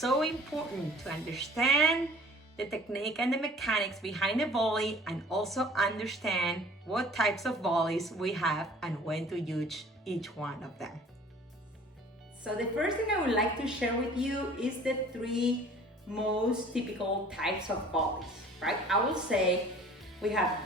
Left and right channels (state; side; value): normal; both; correlation 0.50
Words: important to understand the technique and the mechanics behind the volley, and also understand what types of volleys we have and when to use each one of them. So the first thing I would like to share with you is the 3 most typical types of volleys, right? I will say we have